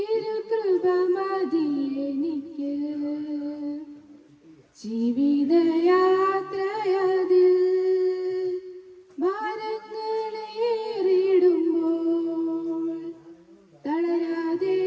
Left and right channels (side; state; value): both; identical; correlation 1.00